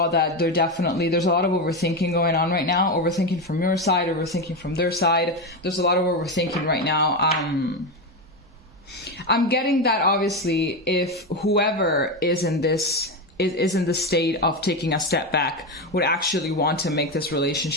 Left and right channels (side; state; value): both; normal; correlation 0.14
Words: that there's a lot of overthinking going on right now. Overthinking from your side, overthinking from their side. There's a lot of overthinking right now. I'm getting that obviously if whoever is in this is in the state of taking a step back would actually want to make this